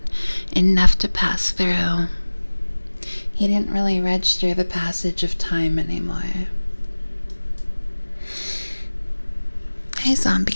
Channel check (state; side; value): inverted; both; correlation -1.00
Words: enough to pass through. He didn't really register the passage of time anymore. Hey, Zombie